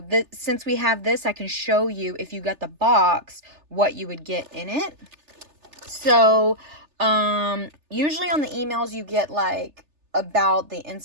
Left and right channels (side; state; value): left; late; 3.3 ms